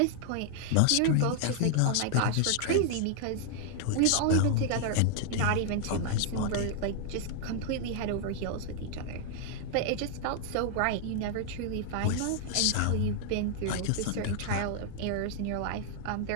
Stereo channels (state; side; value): different; both; correlation -0.01